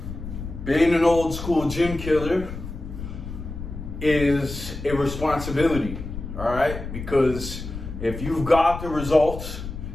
being an old school gym killer is a responsibility, all right? Because if you've got the results,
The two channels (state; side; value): noise; left; rumble, 9 dB below the sound